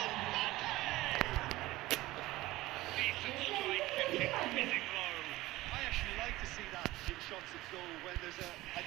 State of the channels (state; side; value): quieter; left; 18.0 dB